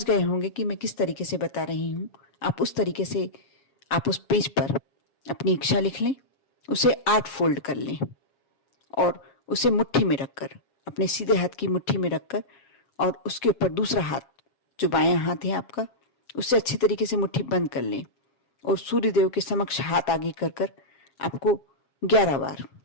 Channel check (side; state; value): right; late; 7.3 ms